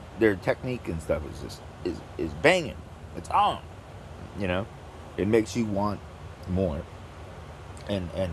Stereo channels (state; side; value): identical; both; correlation 1.00